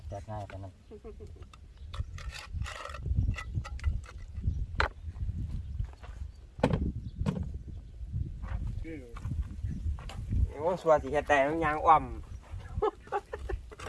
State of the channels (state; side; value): identical; both; correlation 1.00